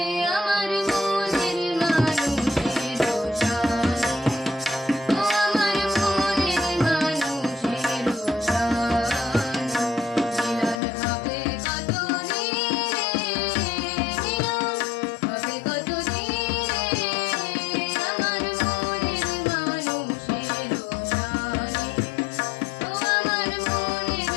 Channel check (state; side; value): drops out; right; at 10.8 s